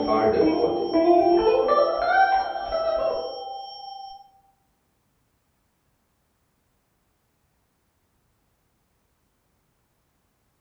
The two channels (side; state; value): both; identical; correlation 1.00